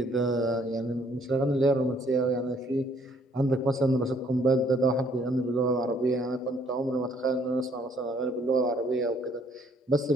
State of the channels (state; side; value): normal; both; correlation 0.64